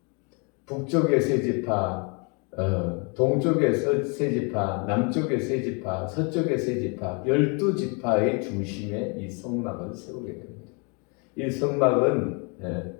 북쪽의 세 지파, 동쪽의 세 지파, 남쪽의 세 지파, 서쪽의 세 지파, 12지파의 중심에 이 성막을 세우게 됩니다. 이 성막은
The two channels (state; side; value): quieter; right; 34.1 dB